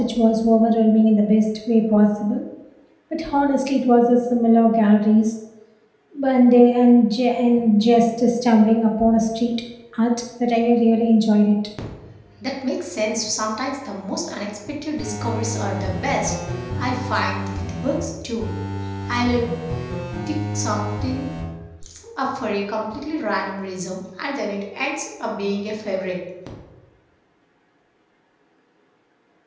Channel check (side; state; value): both; identical; correlation 1.00